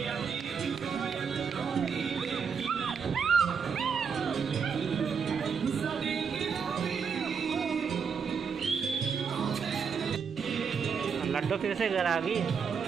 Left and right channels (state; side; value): quieter; left; 6.2 dB